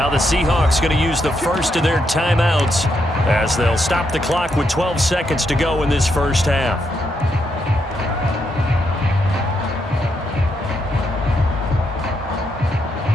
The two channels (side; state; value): both; normal; correlation 0.79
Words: the Seahawks going to use the first of their timeouts as they'll stop the clock with 12 seconds to go in this first half.